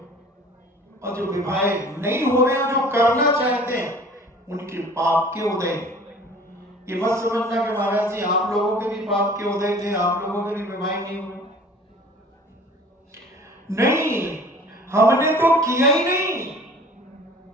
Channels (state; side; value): normal; both; correlation 0.47